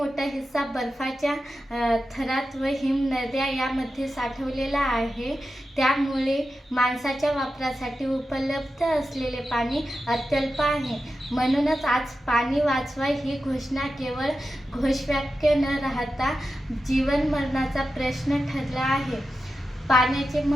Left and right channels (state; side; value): normal; both; correlation 0.91